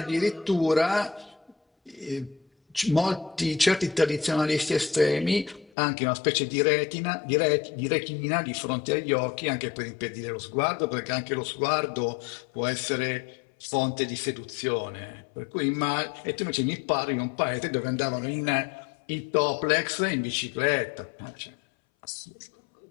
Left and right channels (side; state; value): right; drops out; at 5.7 s